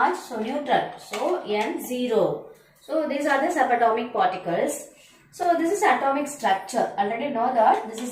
so neutral. So N0. So these are the subatomic particles. So this is atomic structure. Already know that this is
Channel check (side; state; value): both; identical; correlation 1.00